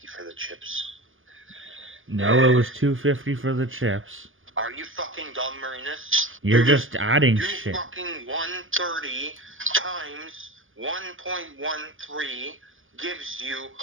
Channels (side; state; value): left; late; 0.58 ms